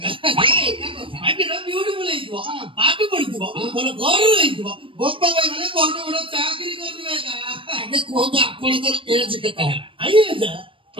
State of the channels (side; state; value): left; late; 0.25 ms